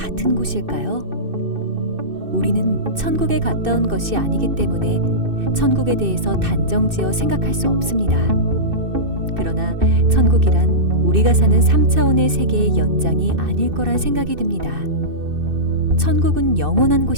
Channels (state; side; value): late; left; 2.6 ms